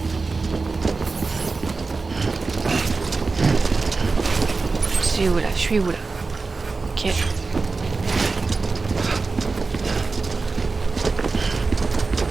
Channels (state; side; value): quieter; left; 4.0 dB